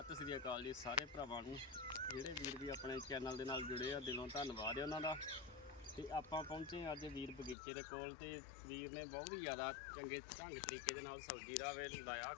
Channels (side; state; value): right; drops out; at 7.6 s